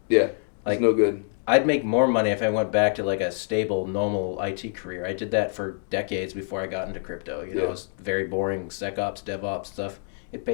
like, it's no good. I'd make more money if I went back to like a stable, normal IT career. I did that for decades before I got into crypto. It was very boring SecOps, DevOps stuff. It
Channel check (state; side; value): silent; right; digital silence